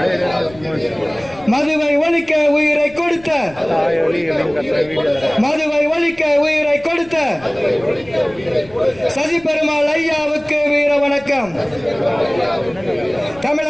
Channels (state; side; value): noise; left; rumble, 23 dB below the sound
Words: மதுவை ஒழிக்க உயிரை கொடுத்த, மதுவை ஒழிக்க உயிரை கொடுத்த சசி பெருமாள் ஐயாவுக்கு வீர வணக்கம்.